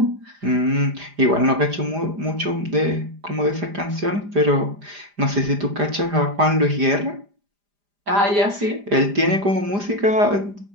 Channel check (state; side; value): late; left; 5.0 ms